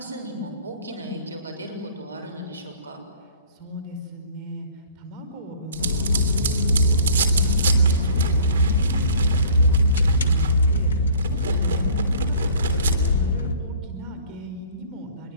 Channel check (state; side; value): inverted; both; correlation -0.51